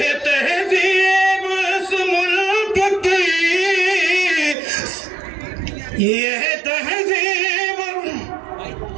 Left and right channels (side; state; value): left; drops out; at 4.5 s